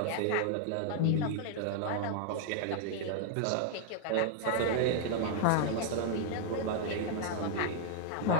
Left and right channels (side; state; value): both; different; correlation 0.00